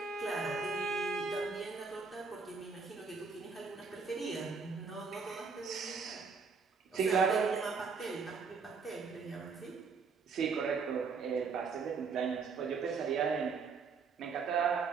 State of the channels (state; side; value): quieter; left; 5.1 dB